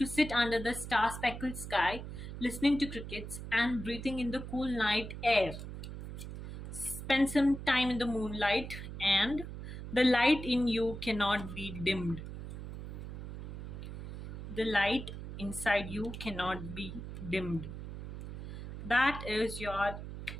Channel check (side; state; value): right; noise; hum, 9 dB below the sound